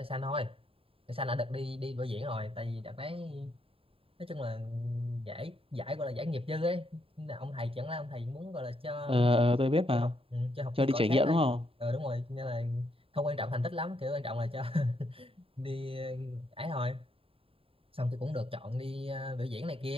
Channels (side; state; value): left; late; 0.27 ms